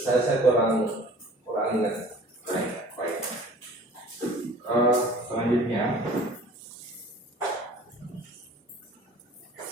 kurang ingat. Baik. Selanjutnya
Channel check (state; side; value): normal; both; correlation 0.47